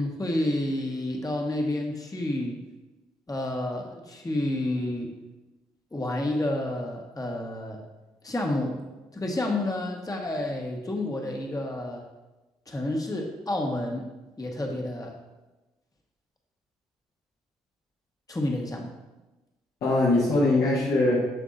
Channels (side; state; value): both; normal; correlation 0.78